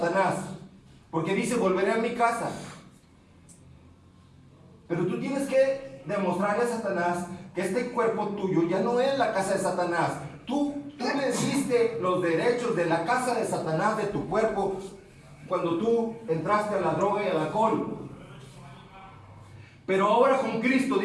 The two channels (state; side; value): identical; both; correlation 1.00